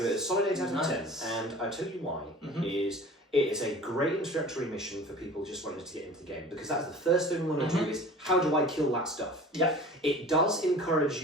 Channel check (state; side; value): normal; both; correlation 0.42